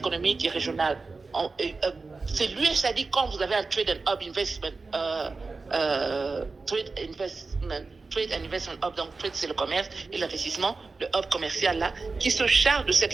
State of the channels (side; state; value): left; quieter; 4.0 dB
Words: et régionale. C'est l'USAID quand vous avez un Trade and Hub Investment Trade and Investment Hub, donc Trade c'est le commerce et l'investissement, le hub commercial là, qui se charge de cette